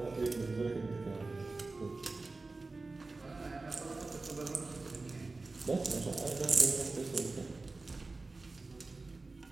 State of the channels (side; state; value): left; quieter; 3.5 dB